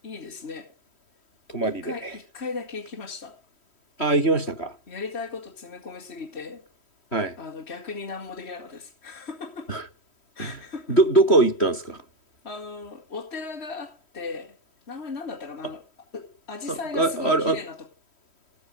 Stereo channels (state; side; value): late; right; 3.1 ms